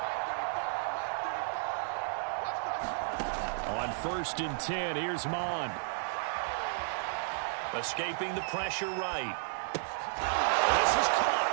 On 1st and 10, here's Mon. Escaping the pressure right. This is caught.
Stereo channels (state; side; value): silent; left; 56 dB below the other